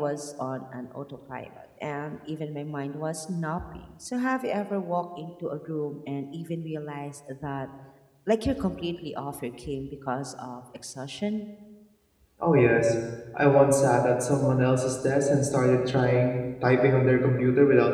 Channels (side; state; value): both; identical; correlation 1.00